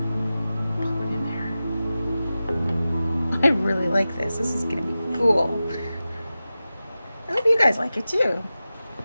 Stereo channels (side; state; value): both; inverted; correlation -0.94